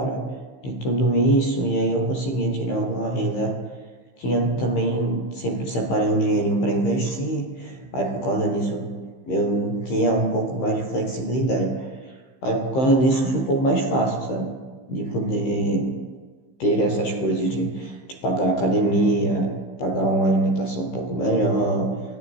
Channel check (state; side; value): late; right; 15 ms